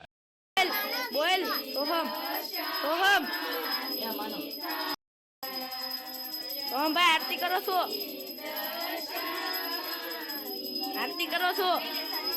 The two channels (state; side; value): identical; both; correlation 1.00